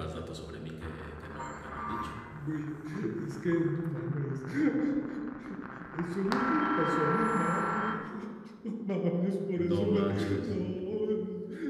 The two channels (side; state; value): both; identical; correlation 1.00